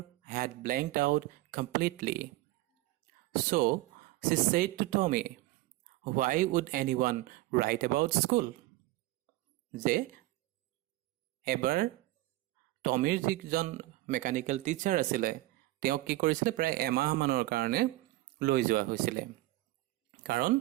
had blanked out completely. So she said to Tommy, why would anyone write about school? যে এবাৰ টমিৰ যিজন mechanical teacher আছিলে তেওঁক কি কৰিছিলে, প্ৰায় এমাহমানৰ কাৰণে লৈ যোৱা হৈছিলে। কাৰণ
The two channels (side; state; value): left; quieter; 18.1 dB